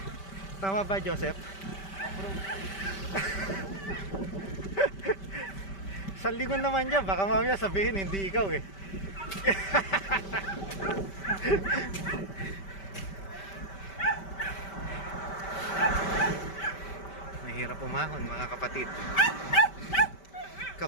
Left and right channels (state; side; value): late; right; 5.1 ms